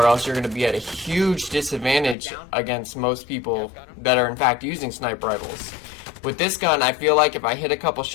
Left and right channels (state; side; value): drops out; right; at 2.1 s